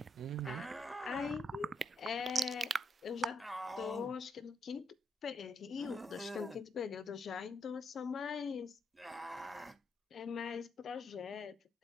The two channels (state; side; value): normal; both; correlation 0.77